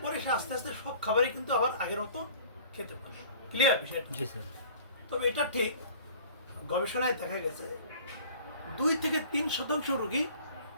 পরে সে আস্তে আস্তে সব খাবারই কিন্তু আবার আগের মতো খেতে পারে। ক্লিয়ার বিষয়টা? জি স্যার। তবে এটা ঠিক, গবেষণায় দেখা গেছে 2 থেকে 3% রোগী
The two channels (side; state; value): both; inverted; correlation -0.48